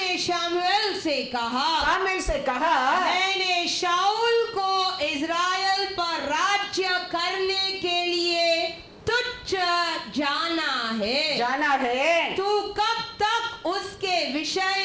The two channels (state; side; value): identical; both; correlation 1.00